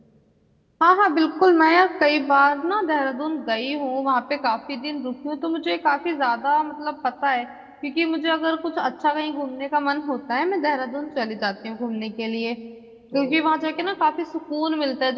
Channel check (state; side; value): identical; both; correlation 1.00